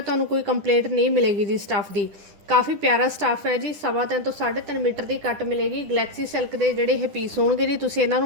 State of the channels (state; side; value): late; left; 10 ms